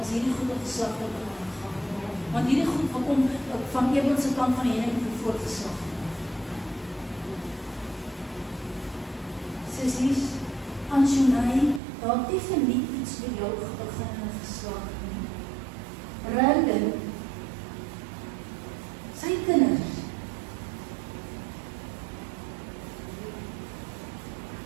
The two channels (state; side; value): drops out; left; at 11.8 s